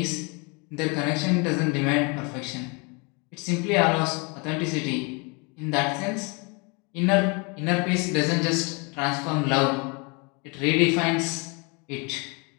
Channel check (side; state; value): right; quieter; 31.1 dB